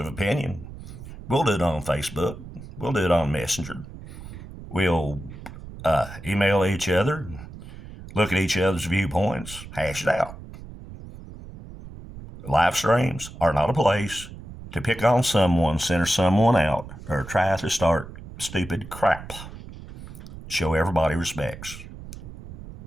opinion, we'll do it on Facebook. We'll do it on Messenger. We'll email each other, look at each other's viewpoints, hash it out. Live streams are not a place to pick on someone, center someone out, or try to start stupid crap. Show everybody respects.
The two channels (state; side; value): noise; right; rumble, 14 dB below the sound